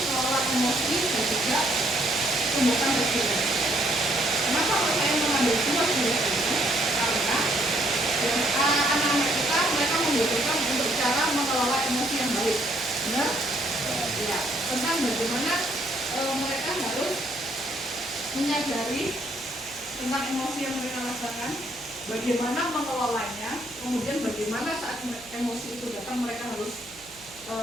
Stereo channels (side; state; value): right; noise; hum, 26 dB below the sound